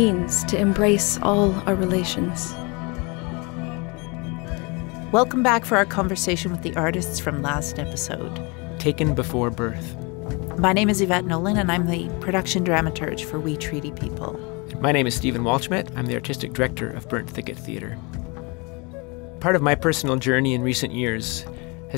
to embrace all our relations. Welcome back for our conversation with the artists from last episode. Taken Before Birth. My name is Yvette Nolan, and I'm the production dramaturge for We Treaty People. My name is Stephen Walschmidt. I'm the artistic director of Burnt Thicket Theatre. Part of my personal journey in recent years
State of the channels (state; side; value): quieter; right; 29.1 dB